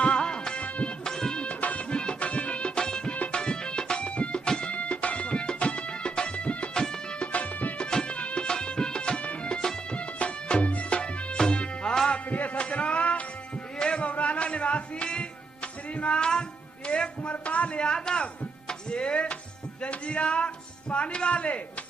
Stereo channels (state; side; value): quieter; left; 4.1 dB